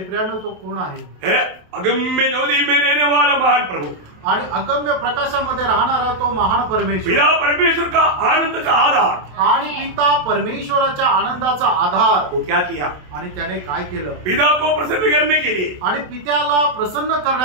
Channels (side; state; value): left; late; 27 ms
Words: प्रियानो तो कोण आहे? अगम्य ज्योति में रहने वाला महान प्रभु. आणि अगम्य प्रकाशामध्ये राहणारा तो महान परमेश्वर. पिता परमेश्वर का आनंद का आधार. आणि पिता परमेश्वराच्या आनंदाचा आधार. वो क्या किया? आणि त्याने काय केलं? पिता को प्रसन्न करने के लिए आणि पित्याला प्रसन्न